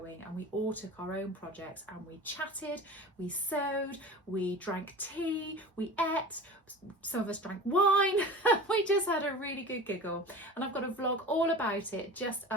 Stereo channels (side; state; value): both; normal; correlation 0.36